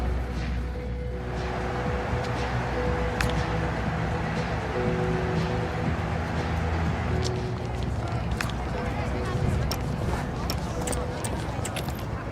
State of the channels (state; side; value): identical; both; correlation 1.00